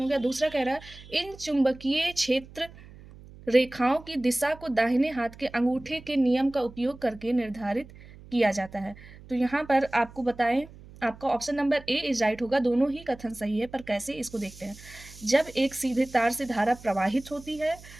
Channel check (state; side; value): noise; right; hum, 19 dB below the sound